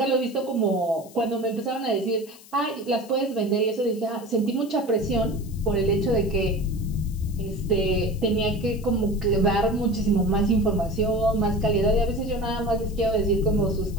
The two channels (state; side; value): noise; left; hiss, 22 dB below the sound